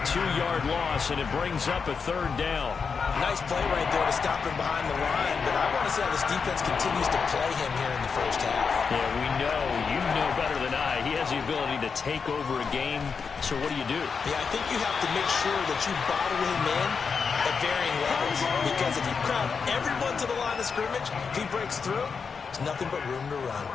2-yard loss, and it brings up a third down. Nice play right there to stop him behind the line, but I want to see how this defense continues to play him here in the first half. Yeah, we know. You know better than I. He has the ability to take over a game, so what do you do? Yeah, I think you have to make sure that you bottle him in at varying levels, because if you crowd everyone to the line of scrimmage, if he breaks through, there's nothing but room to run.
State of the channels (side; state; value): right; quieter; 5.6 dB